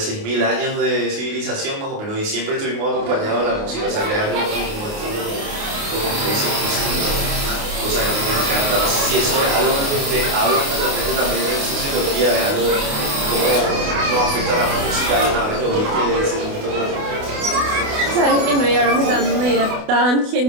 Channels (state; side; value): late; left; 28 ms